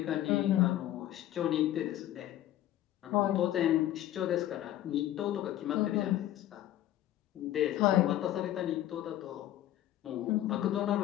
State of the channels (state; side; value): quieter; right; 13.2 dB